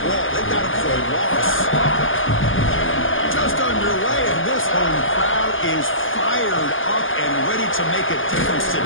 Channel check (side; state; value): right; late; 0.58 ms